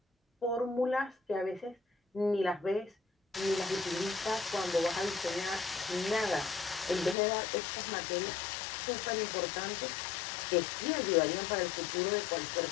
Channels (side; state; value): right; drops out; at 7.2 s